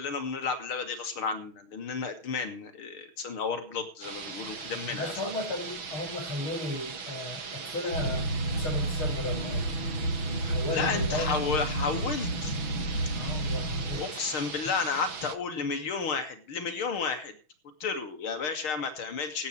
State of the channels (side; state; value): right; late; 6.6 ms